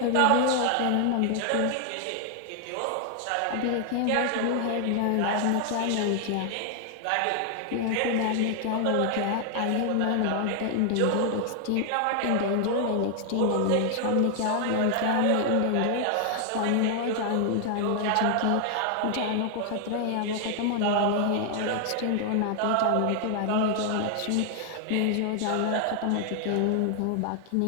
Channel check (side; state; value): both; different; correlation 0.00